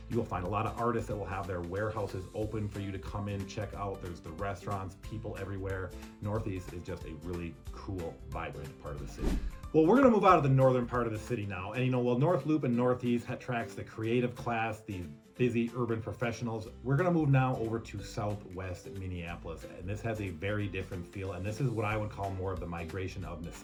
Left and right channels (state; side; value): identical; both; correlation 1.00